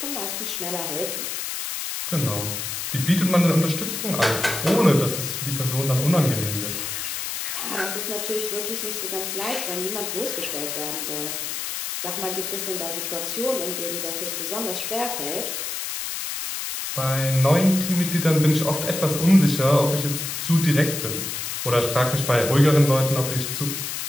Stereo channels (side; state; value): left; noise; hiss, 4 dB below the sound